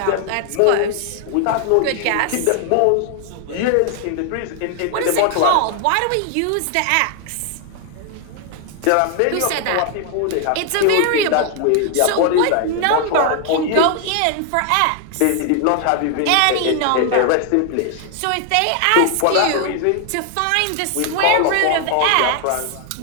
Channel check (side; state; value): both; different; correlation 0.00